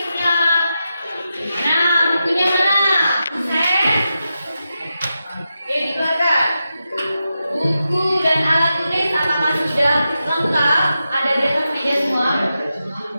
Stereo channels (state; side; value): inverted; both; correlation -0.89